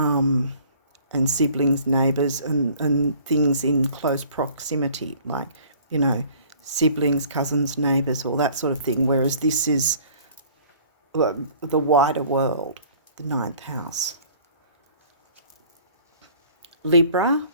siblings, neighbours, and things in close proximity, like, siblings, cousins, neighbours, all that sort of thing, whereas this is the wider world, the 9th house. Libra,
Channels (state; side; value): inverted; both; correlation -0.52